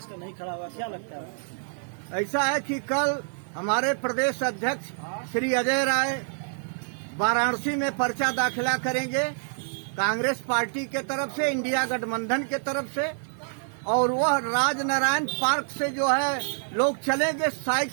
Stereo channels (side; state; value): left; silent; digital silence